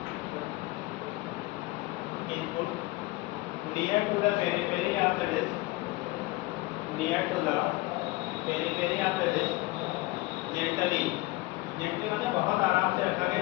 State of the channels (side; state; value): right; quieter; 20.8 dB